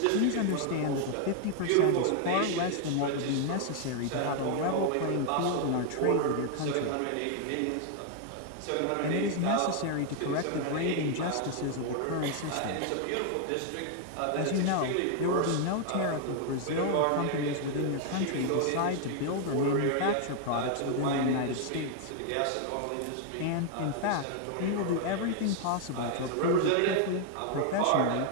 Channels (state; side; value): different; both; correlation 0.00